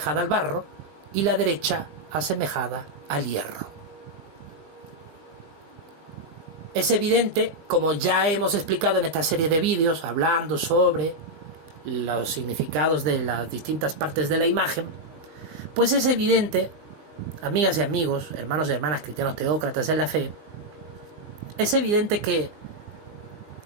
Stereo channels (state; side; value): late; left; 20 ms